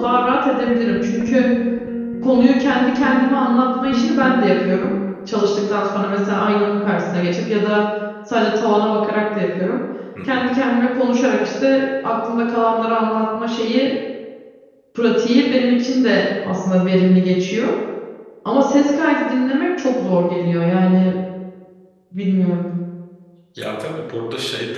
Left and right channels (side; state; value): both; identical; correlation 1.00